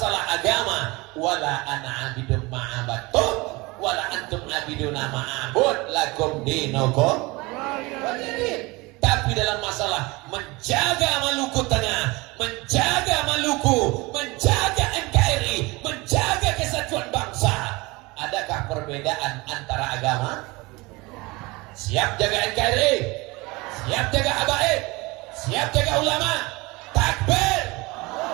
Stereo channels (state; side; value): quieter; left; 23.8 dB